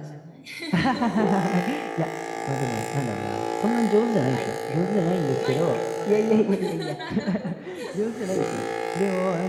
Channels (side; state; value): both; identical; correlation 1.00